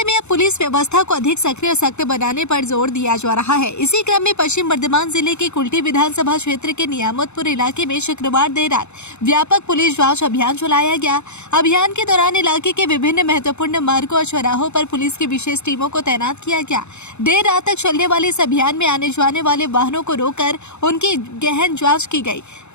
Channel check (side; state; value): right; late; 0.82 ms